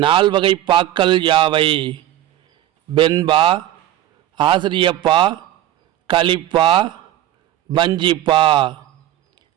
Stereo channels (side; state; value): left; quieter; 13.3 dB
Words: நால்வகை பாக்கள் யாவை? வெண்பா, ஆசிரியப்பா, கலிப்பா, பஞ்சிப்பா.